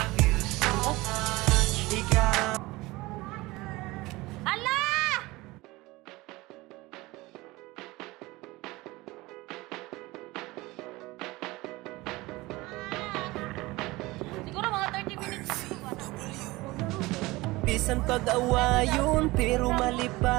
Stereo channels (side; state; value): left; quieter; 20.8 dB